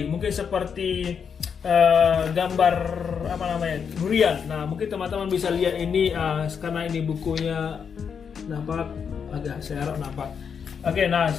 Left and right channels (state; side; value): quieter; right; 6.8 dB